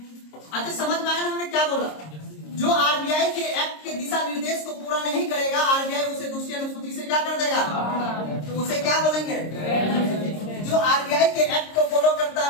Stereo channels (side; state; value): right; late; 26 ms